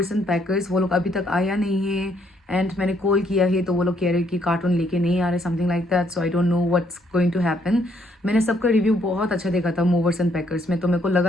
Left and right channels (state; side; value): normal; both; correlation 0.70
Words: and packers, वो लोग अभी तक आया नहीं है एंड मैंने कॉल किया है तो वो लोग कह रहे हैं कि कार्टून लेके नहीं आ रहे, something like that. So I don't know what's going to happen. मैंने सबका रिव्यू बहुत अच्छा देखा था मूवर्स एंड पैकर्स में, तो मेरे को